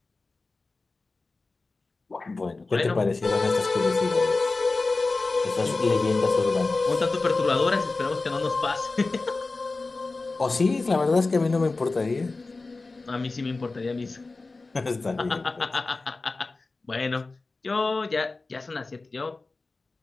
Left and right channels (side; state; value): right; quieter; 3.6 dB